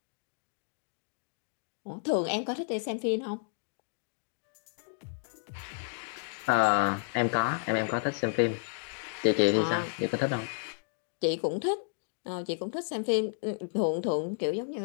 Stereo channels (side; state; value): right; silent; digital silence